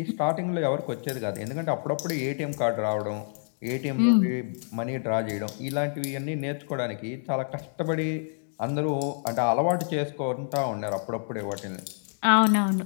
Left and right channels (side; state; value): right; silent; digital silence